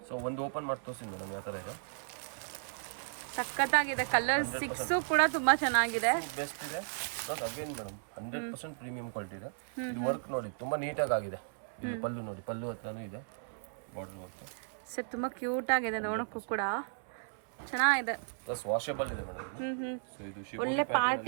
ಸೊ ಒಂದು ಓಪನ್ ಮಾಡಿ ತೋರಿಸಿ ಮೇಡಮ್ ಯಾವ ತರ ಇದೆ. ಸಖತ್ತಾಗಿದೆ ಕಲರ್. 6 ಕೂಡ ತುಂಬಾ ಚೆನ್ನಾಗಿದೆ, ಬೆಸ್ಟ್ ಇದೆ. Plus again madam 100% premium quality ಇದೆ. ಇದು ವರ್ಕ್ ನೋಡಿ ತುಂಬಾ ನೀಟಾಗಿ ಆಗಿದೆ. ಇದು ಪಲ್ಲು ನೋಡಿ, ಪಲ್ಲು ಹತ್ರನೂ ಇದೆ ಬಾರ್ಡರ್ ವರ್ಕ್. ಸರ್ ತುಂಬಾ ಕ್ಯೂಟ್ ಆಗಿದೆ ನೋಡೋಕ್ಕೂ ಕೂಡ ಚೆನ್ನಾಗಿದೆ. ಪ್ಲಸ್ ವಾಷಬಲ್ ಇದೆ ಮೇಡಮ್. ಸೊ ಇದು ಒಳ್ಳೆ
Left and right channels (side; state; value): left; silent; 54 dB below the other